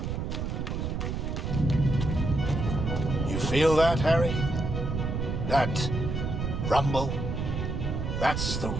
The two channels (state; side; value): noise; right; rumble, 2 dB below the sound